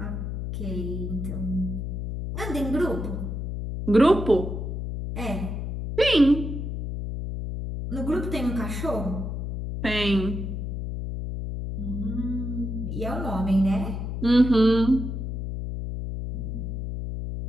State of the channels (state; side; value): noise; left; hum, 4 dB below the sound